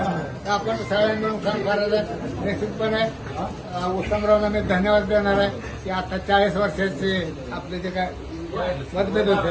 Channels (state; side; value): identical; both; correlation 1.00